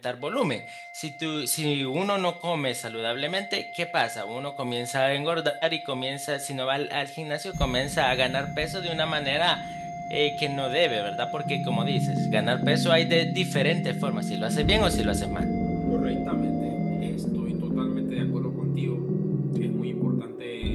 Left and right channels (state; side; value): identical; both; correlation 1.00